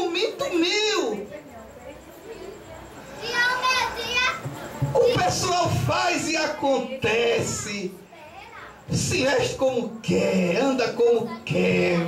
meu? O pessoal faz e acontece. Se veste como quer, anda como quer,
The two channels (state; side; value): identical; both; correlation 1.00